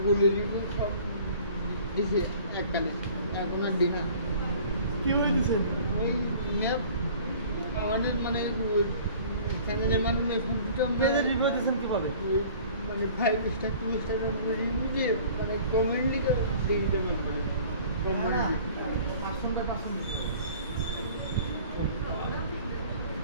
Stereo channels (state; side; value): inverted; both; correlation -0.49